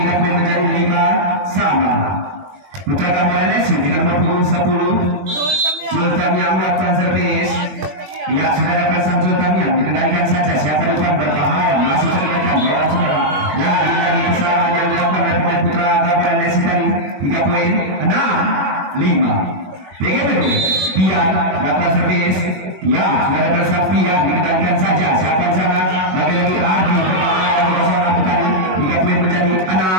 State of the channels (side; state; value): left; late; 21 ms